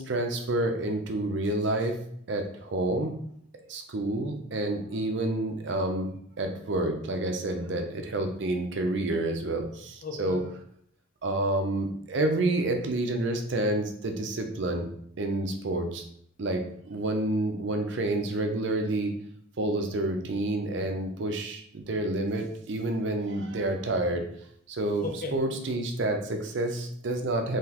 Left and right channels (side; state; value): both; normal; correlation 0.33